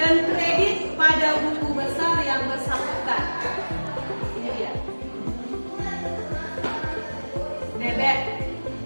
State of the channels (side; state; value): both; inverted; correlation -1.00